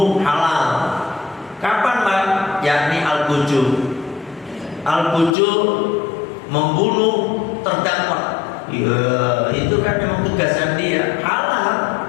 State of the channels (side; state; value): right; drops out; at 5.4 s